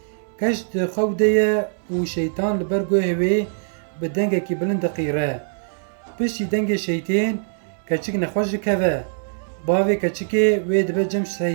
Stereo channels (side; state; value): left; silent; digital silence